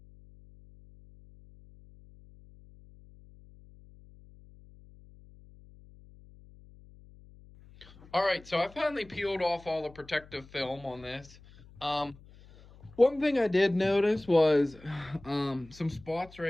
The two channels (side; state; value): left; noise; hum, 23 dB below the sound